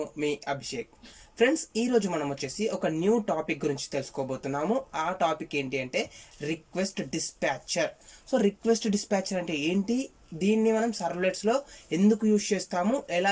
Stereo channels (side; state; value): both; identical; correlation 1.00